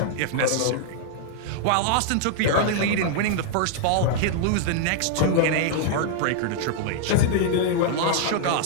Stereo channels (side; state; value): both; different; correlation -0.01